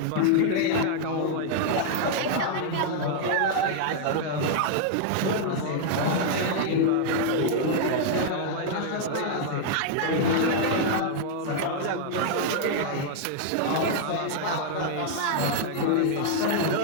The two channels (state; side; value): different; both; correlation -0.01